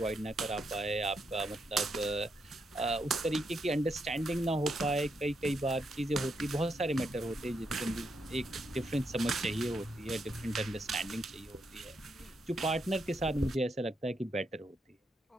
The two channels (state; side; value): normal; both; correlation 0.80